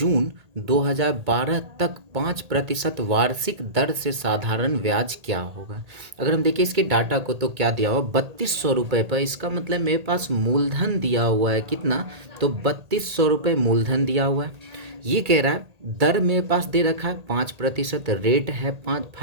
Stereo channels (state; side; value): late; left; 1.8 ms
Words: 2012 तक 5% वार्षिक दर से साधारण ब्याज क्या होगा। अगर हम देखें इसके डाटा को तो क्या दिया हुआ 3200 रुपये पर, इसका मतलब मेरे पास मूलधन दिया हुआ है कितना, तो 3200 रुपये मूलधन दिया हुआ है। ये कह रहा है दर मेरे पास दे रखा है 5%, रेट है